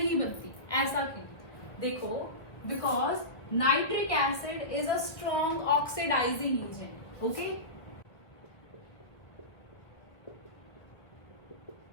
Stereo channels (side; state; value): right; late; 1.2 ms